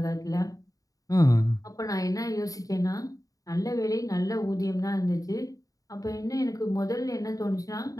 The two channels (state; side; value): late; right; 0.17 ms